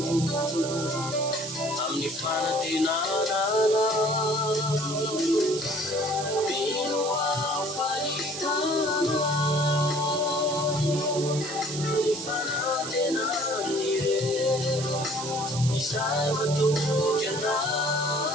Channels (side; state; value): right; noise; hiss, 7 dB below the sound